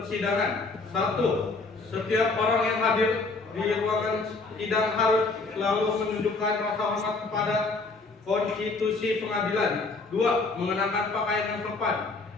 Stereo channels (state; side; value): quieter; right; 3.7 dB